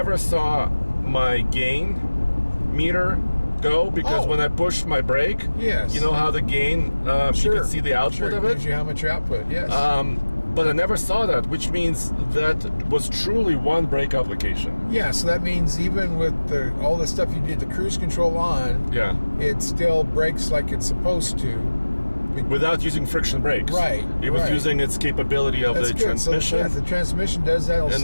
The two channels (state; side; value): inverted; both; correlation -1.00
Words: saw my gain meter go because when I pushed my brake, Yes. you know how the gain, you can see the output sure, of it it. gives you how much output, yes. But I never saw that, which means that was truly 1 brake application. Yeah, so that means even with all the stuff you did the cruise control on, Yeah. it still brakes like it's supposed to. Without using friction brakes. Right, It was right. using its capability of That's the good. transmission. So, yeah, the transmission does that. It'll And save